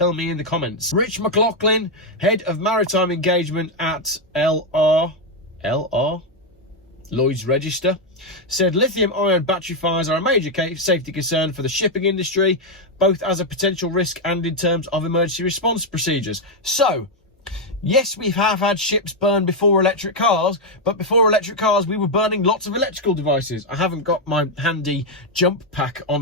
me in the comments. Rich McLaughlin, head of maritime engagement at Lloyd's Register, said lithium-ion battery fires are a major safety concern for the shipping industry, both as a potential risk and in terms of emergency response procedures. So, yes, we have had ships burn before electric cars, but before electric cars, we were burning lots of electrical devices. I haven't got my handy jump pack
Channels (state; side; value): normal; both; correlation 0.02